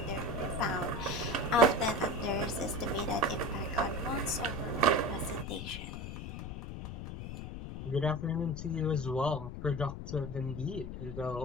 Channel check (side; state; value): left; noise; rumble, 7 dB below the sound